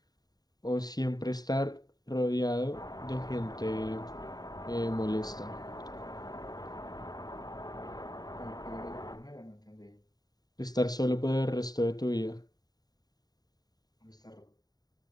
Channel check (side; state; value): right; late; 0.19 ms